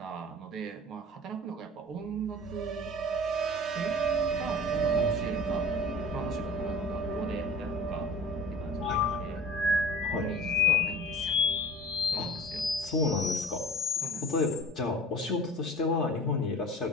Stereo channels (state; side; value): normal; both; correlation 0.40